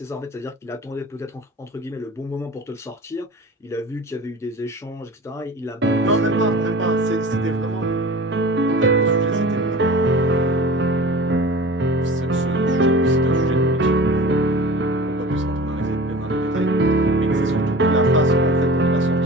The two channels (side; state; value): both; normal; correlation 0.38